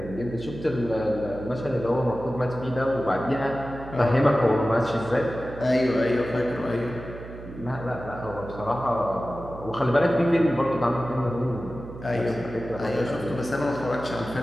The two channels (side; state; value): right; noise; hum, 13 dB below the sound